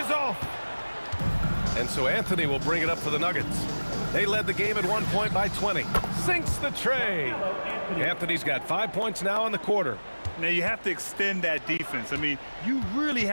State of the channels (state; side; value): inverted; both; correlation -1.00